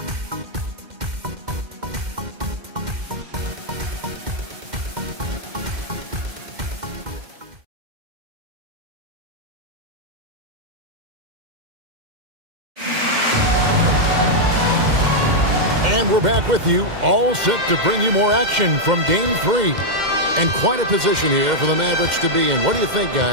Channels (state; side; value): late; left; 2.1 ms